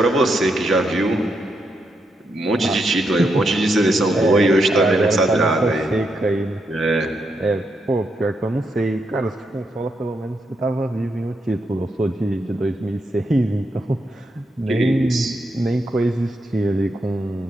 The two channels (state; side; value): normal; both; correlation 0.81